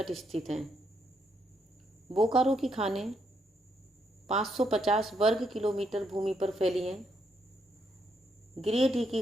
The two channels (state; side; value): normal; both; correlation 0.76